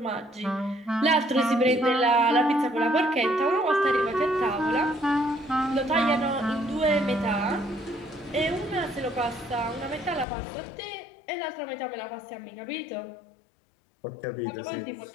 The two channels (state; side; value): drops out; right; at 10.2 s